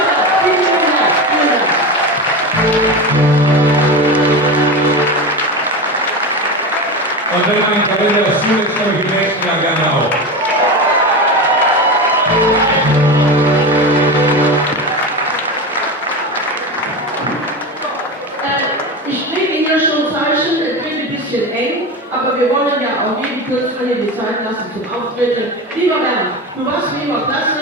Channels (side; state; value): both; normal; correlation 0.23